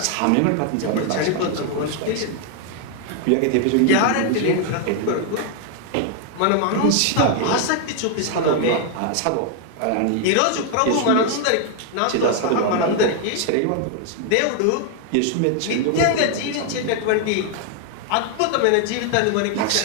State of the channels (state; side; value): different; both; correlation 0.00